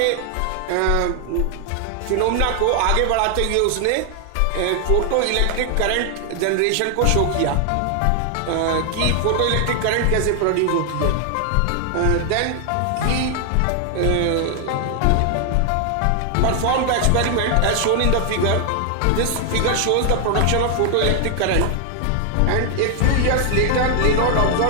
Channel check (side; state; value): both; different; correlation 0.00